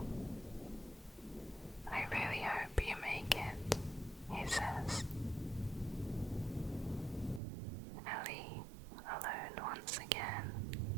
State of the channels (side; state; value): left; drops out; at 7.4 s